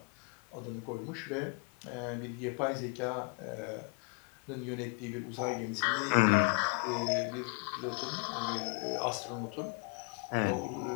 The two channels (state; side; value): quieter; right; 35.3 dB